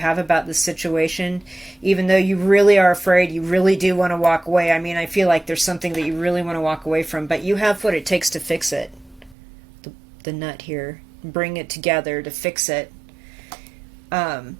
about the situation, even though you really are afraid, you really do want to walk away. I mean, I feel like there's something that you really want to walk away from, but you have what it takes to fix it. The nut here, bring it together to fix it.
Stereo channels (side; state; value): left; drops out; at 9.3 s